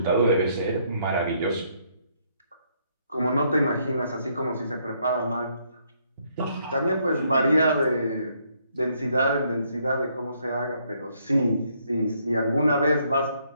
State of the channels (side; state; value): both; inverted; correlation -0.71